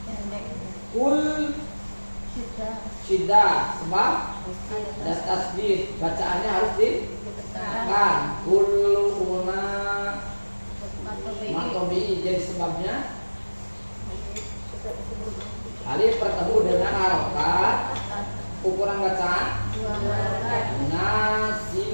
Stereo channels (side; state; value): both; inverted; correlation -1.00